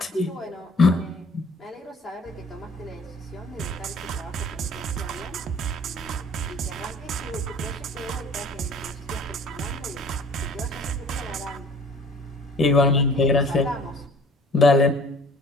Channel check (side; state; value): both; normal; correlation 0.50